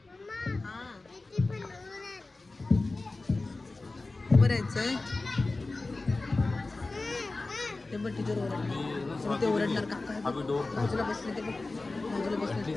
खायचंय. ते बघ टीचर ओरडणार, ते ओरडणार. काका बाजूला बसले, ते बघ बाजूला बसले,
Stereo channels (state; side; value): quieter; right; 3.3 dB